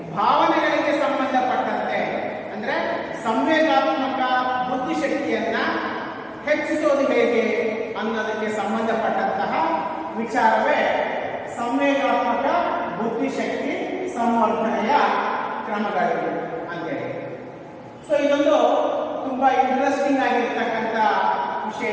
ಭಾವನೆಗಳಿಗೆ ಸಂಬಂಧಪಟ್ಟಂತೆ ಅಂದ್ರೆ ಸಂವೇಗಾತ್ಮಕ ಬುದ್ಧಿಶಕ್ತಿಯನ್ನ ಹೆಚ್ಚಿಸೋದು ಹೇಗೆ ಅನ್ನೋದಕ್ಕೆ ಸಂಬಂಧಪಟ್ಟಂತಹ ವಿಚಾರವೇ ಸಂವೇಗಾತ್ಮಕ ಬುದ್ಧಿಶಕ್ತಿ ಸಂವರ್ಧನೆಯ ಕ್ರಮಗಳು ಅಂತೇಳಿ. ಸೊ ಇದೊಂದು ತುಂಬಾ ಇಂಟ್ರೆಸ್ಟಿಂಗ್ ಆಗಿರ್ತಕ್ಕಂಥ ವಿಷಯ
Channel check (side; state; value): both; identical; correlation 1.00